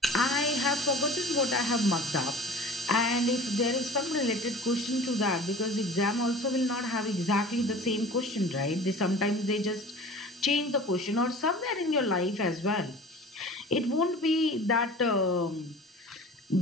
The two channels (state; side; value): normal; both; correlation 0.41